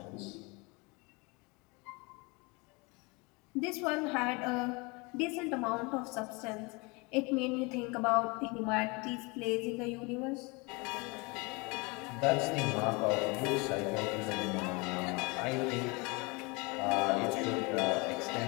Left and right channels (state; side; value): quieter; right; 27.9 dB